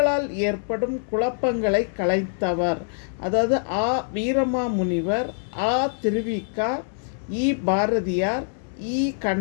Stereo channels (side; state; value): right; silent; 62 dB below the other